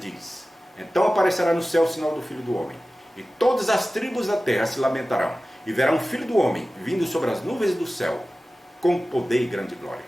então aparecerá no céu o sinal do Filho do Homem. E todas as tribos da terra se lamentarão. E verão o Filho do Homem vindo sobre as nuvens do céu, com poder e grande glória.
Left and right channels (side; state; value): both; normal; correlation 0.96